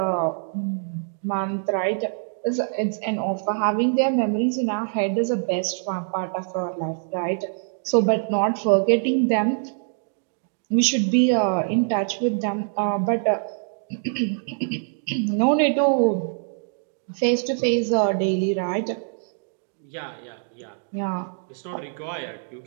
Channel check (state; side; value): silent; left; digital silence